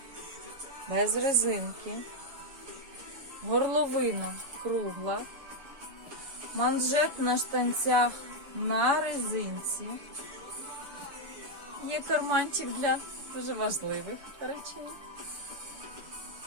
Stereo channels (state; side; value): late; left; 7.0 ms